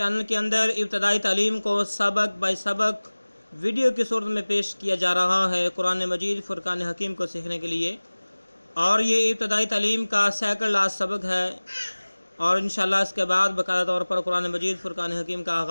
کے اندر ابتدائی تعلیم کو سبق بائی سبق ویڈیو کی صورت میں پیش کیا جا رہا ہے قرآن مجید فرقان حکیم کو سیکھنے کے لیے، اور یہ ابتدائی تعلیم کا سیکنڈ لاسٹ سبق ہے، اور انشاءاللہ اس کے بعد باقاعدہ طور پر قرآن مجید فرقان حکیم کا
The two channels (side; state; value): both; inverted; correlation -1.00